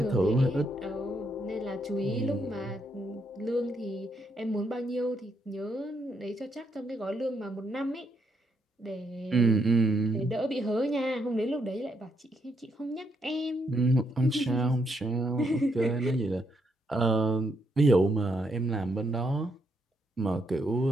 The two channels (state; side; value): normal; both; correlation 0.76